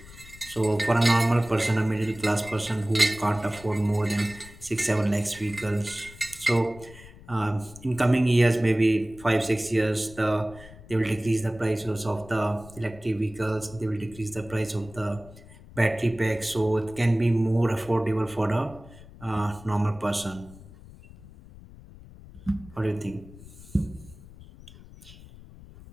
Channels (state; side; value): noise; left; rumble, 19 dB below the sound